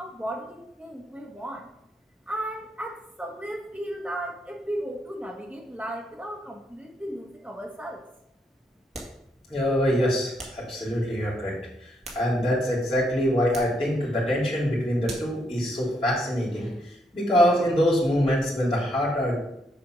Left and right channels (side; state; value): both; normal; correlation 0.76